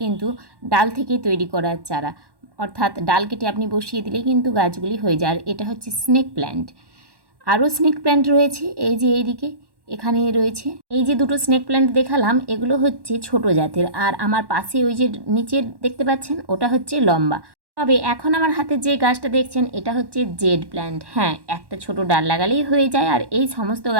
কিন্তু ডাল থেকে তৈরি করার চারা, অর্থাৎ ডাল কেটে আপনি বসিয়ে দিলেই কিন্তু গাছগুলি হয়ে যায়। আর এটা হচ্ছে স্নেক প্ল্যান্ট। আরও স্নেক প্ল্যান্ট রয়েছে, এই যে এইদিকে এখানে রয়েছে। এই যে দুটো স্নেক প্ল্যান্ট দেখালাম, এগুলো হচ্ছে ছোট জাতের। আর আমার পাশে ওই যে নিচের দেখতে পাচ্ছেন, ওটা হচ্ছে লম্বা। তবে এখন আমার হাতে যে গাছটা দেখছেন, এটা হচ্ছে জেড প্ল্যান্ট। হ্যাঁ, একটা ছোট ডাল লাগালেই হয়ে যায়। আর এই সমস্ত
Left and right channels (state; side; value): late; left; 1.1 ms